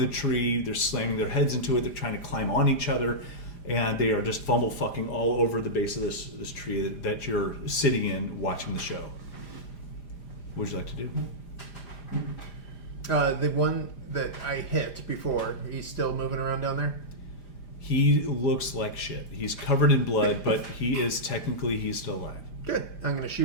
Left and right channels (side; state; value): right; late; 5.0 ms